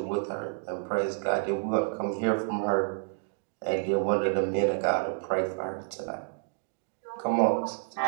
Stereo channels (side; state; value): left; silent; digital silence